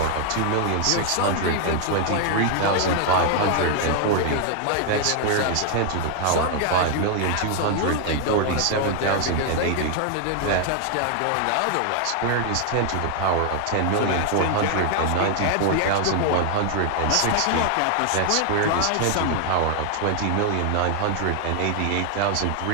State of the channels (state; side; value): different; both; correlation 0.00